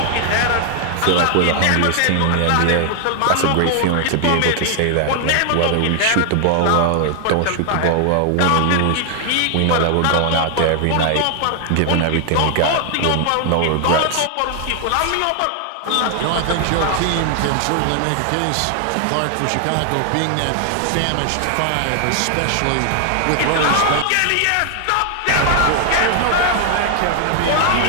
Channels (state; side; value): different; both; correlation 0.00